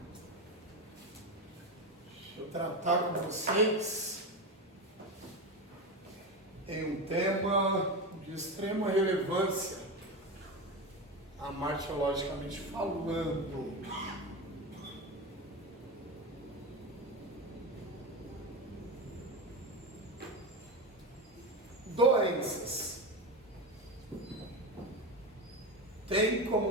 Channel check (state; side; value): normal; both; correlation 0.19